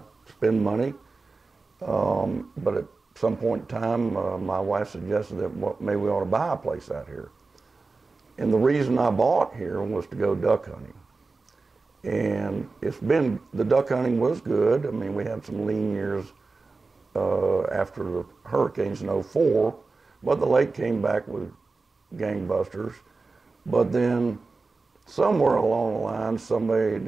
spend money. But at some point in time, my wife suggested that maybe we ought to buy a place out here. And the reason I bought here was to go duck hunting. And the duck hunting was good. I mean, we had some lean years after the hurricanes in '04, but the lake came back with gangbusters. But then somewhere along the line, somebody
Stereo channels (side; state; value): left; quieter; 3.9 dB